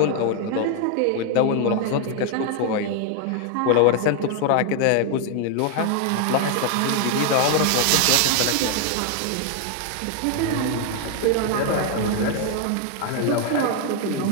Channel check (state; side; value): different; both; correlation 0.00